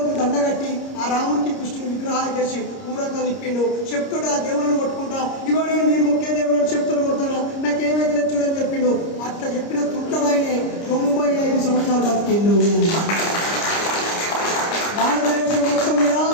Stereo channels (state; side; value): late; right; 30 ms